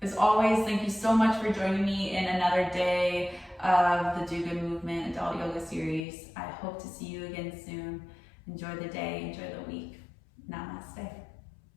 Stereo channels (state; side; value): drops out; right; at 6.1 s